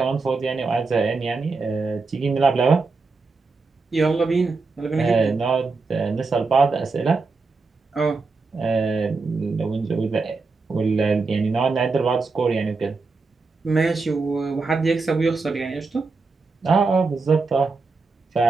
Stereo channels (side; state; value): left; quieter; 4.1 dB